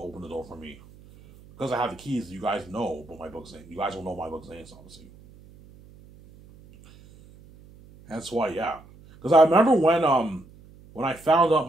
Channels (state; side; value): noise; right; hum, 23 dB below the sound